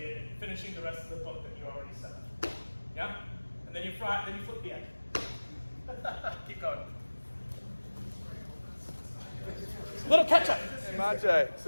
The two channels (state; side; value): inverted; both; correlation -1.00